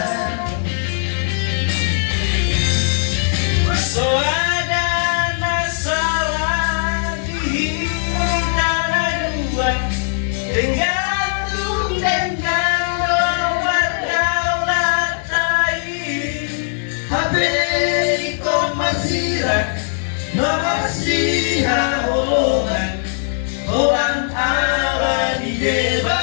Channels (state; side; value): silent; right; digital silence